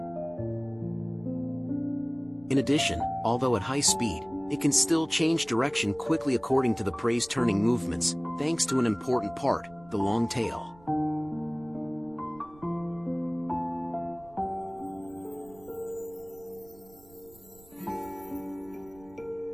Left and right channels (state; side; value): noise; right; rumble, 25 dB below the sound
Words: In addition, although at high speed, it can still change direction quickly according to the prey's turning movements, thanks to an important part, the long tail.